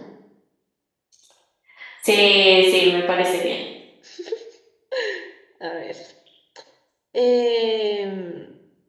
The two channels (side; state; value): both; identical; correlation 1.00